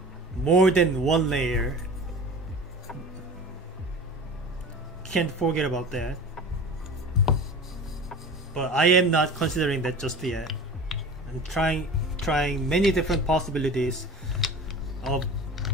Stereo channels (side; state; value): both; normal; correlation 0.37